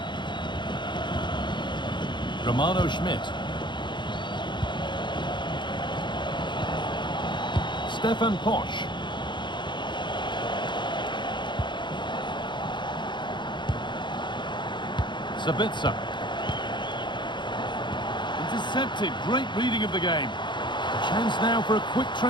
Romano Schmidt. Stefan Posch. Sabitzer. Intercepted. Great reading of the game. A chance now for a quick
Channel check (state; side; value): late; right; 0.22 ms